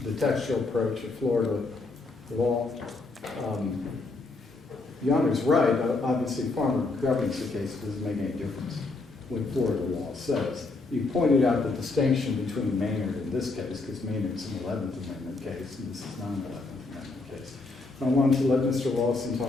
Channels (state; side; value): quieter; right; 3.5 dB